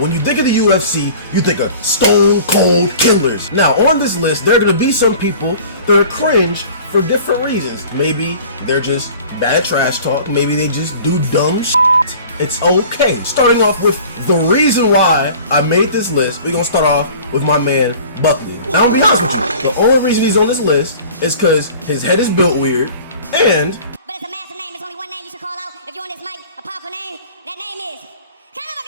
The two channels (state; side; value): inverted; both; correlation -0.45